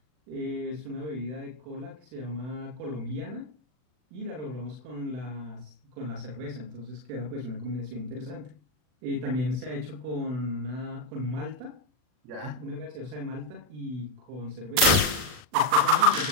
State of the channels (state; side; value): late; left; 40 ms